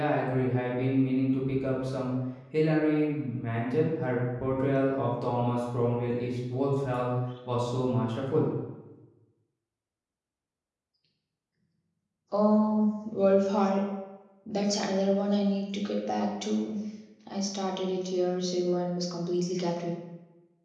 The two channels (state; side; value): identical; both; correlation 1.00